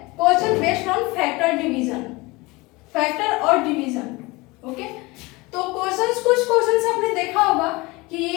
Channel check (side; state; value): right; quieter; 23.6 dB